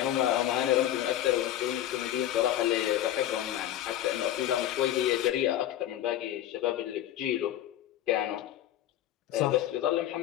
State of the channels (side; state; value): right; quieter; 12.4 dB